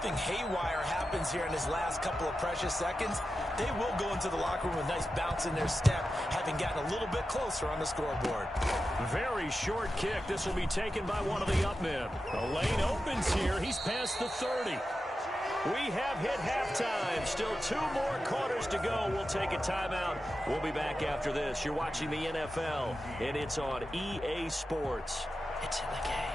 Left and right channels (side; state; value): both; normal; correlation 0.91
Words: haywire happens here in his last couple of precious seconds, they will go into the locker room with a nice bounce in their step, having gotten a little bit closer on the scoreboard. Very short kick. This will be taken by one of the up men. The lane opens here. He's past the 30. We have hit halftime. Still 2 more quarters to go. We'll take a timeout. We'll be back after this. You're watching the NFL, and it's on EA Sports. It's in the